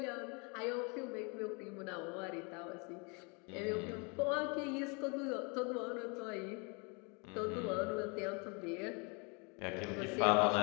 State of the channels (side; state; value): right; quieter; 32.3 dB